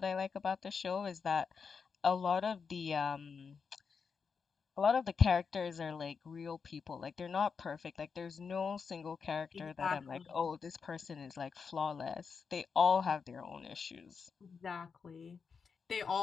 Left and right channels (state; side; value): quieter; right; 5.7 dB